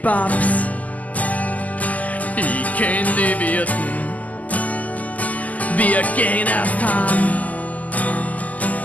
ich kenn die Wirten. Wir gehen erst heim,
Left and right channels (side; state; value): right; late; 0.076 ms